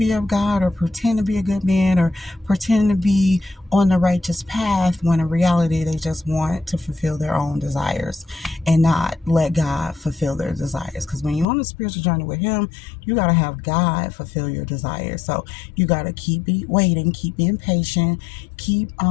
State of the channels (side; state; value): right; drops out; at 11.5 s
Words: of God or pretend to be a good man or pretend to be on the righteous path, when in reality they just want to fulfill their own desires and not let God fulfill their desires. Because when you're on a spiritual journey with him, you got to have God fulfill your desires. So you got to keep waiting, keep being patient, keep